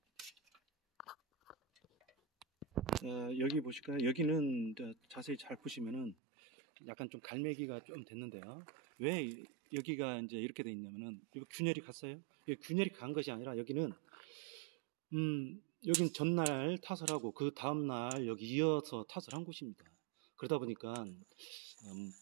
여기 보실까요? 여기는 자세히 잘 보시면은 약간 좀 갈매기가 좀 됐는데요. 왜 여기가 이제 이렇게 돼 있냐면은, 이거 균열이 갔어요. 균열이 간 것이 아니라 여기는 전날 타설하고 그 다음날 여기 이어서 타설한 곳입니다. 그러다 보니까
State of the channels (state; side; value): drops out; left; at 6.2 s